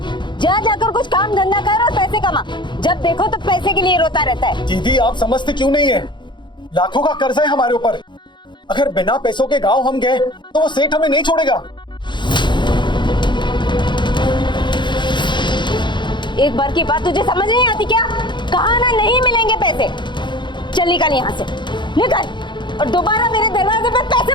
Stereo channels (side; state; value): right; late; 0.23 ms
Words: जा जाकर कुछ काम धंधा कर और पैसे कमा। जब देखो तो पैसे के लिए रोता रहता है। दीदी आप समझते क्यों नहीं है? लाखों का कर्ज है हमारे ऊपर। अगर बिना पैसों के गांव हम गए तो वो सेठ हमें नहीं छोड़ेगा। एक बार की बात तुझे समझ नहीं आती क्या? कहा ना नहीं मिलेंगे पैसे। चल निकल यहाँ से, निकल। और दोबारा मेरे दरवाजे पे पैसे